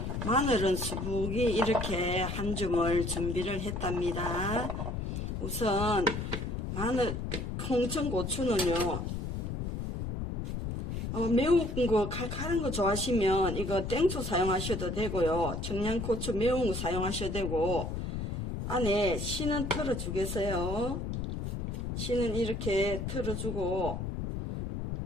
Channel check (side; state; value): left; noise; rumble, 4 dB below the sound